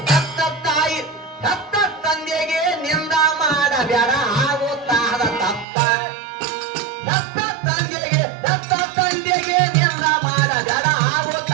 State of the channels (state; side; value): drops out; left; at 5.7 s